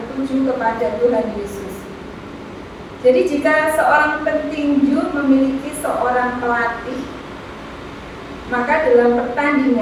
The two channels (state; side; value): identical; both; correlation 1.00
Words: kepada Tuhan Yesus. Jadi jika seorang petinju memiliki seorang pelatih, maka dalam